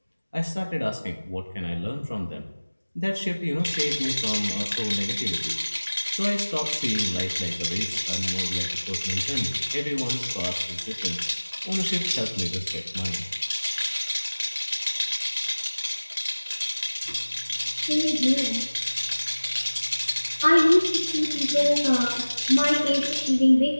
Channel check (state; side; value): inverted; both; correlation -1.00